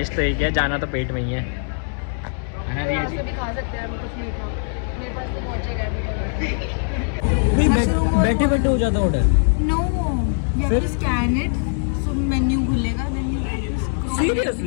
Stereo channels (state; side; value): silent; right; digital silence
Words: तो एक है, जाना तो पेट में ही है ना रिया जी। भी खा सकते हैं हम कुछ मीठा, मेरे पास तो पहुंचेगा बैठे बैठे हो जाता order. No, you have to scan it, so menu खुलेगा, देन यू